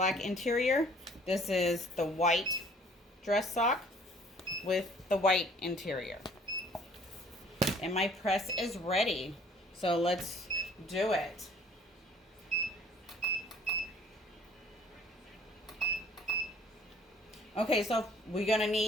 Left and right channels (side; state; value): both; normal; correlation 0.56